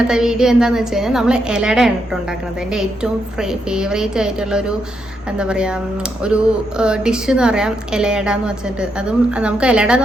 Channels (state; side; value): normal; both; correlation 0.80